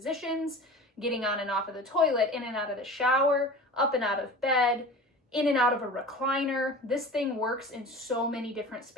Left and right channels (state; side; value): normal; both; correlation 0.37